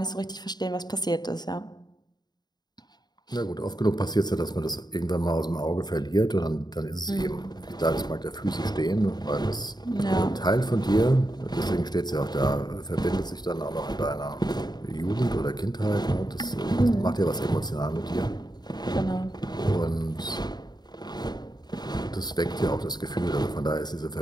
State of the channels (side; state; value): right; late; 0.20 ms